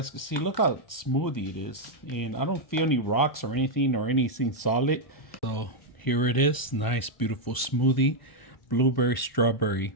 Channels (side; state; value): right; late; 1.0 ms